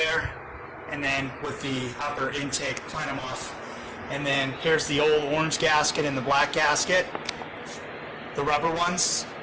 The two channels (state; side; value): identical; both; correlation 1.00